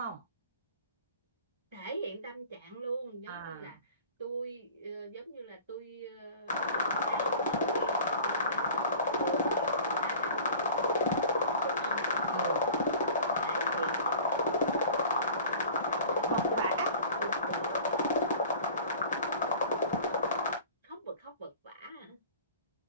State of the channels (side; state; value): both; inverted; correlation -0.43